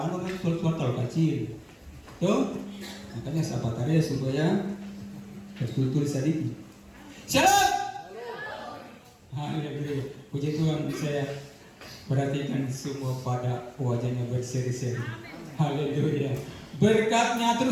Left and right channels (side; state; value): both; identical; correlation 1.00